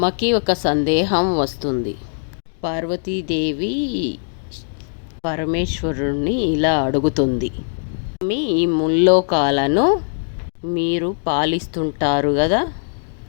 ఒక సందేహం వస్తుంది. పార్వతీదేవి పరమేశ్వరుణ్ణి ఇలా అడుగుతుంది. స్వామి, ఈ ముల్లోకాలను మీరు పాలిస్తుంటారు కదా,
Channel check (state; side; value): silent; right; digital silence